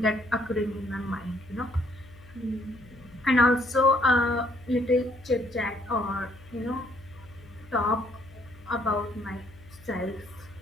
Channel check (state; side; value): noise; left; hum, 22 dB below the sound